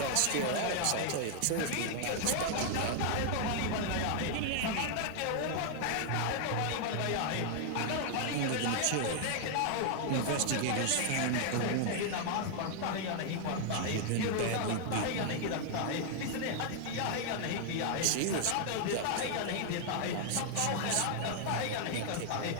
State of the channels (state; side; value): different; both; correlation 0.00